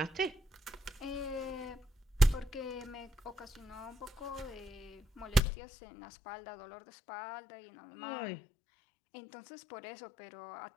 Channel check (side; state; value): right; drops out; at 5.4 s